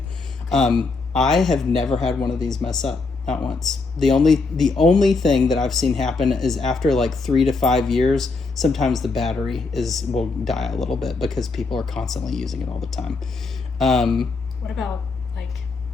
I have never had one of these mess up, not once. The only thing that I've seen happen is after like 3 to 5 years, sometimes the battery will die a little bit because people are constantly using it all the time. What about like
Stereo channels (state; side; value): quieter; right; 3.9 dB